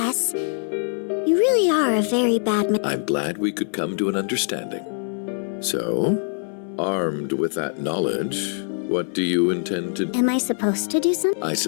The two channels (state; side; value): silent; right; 60 dB below the other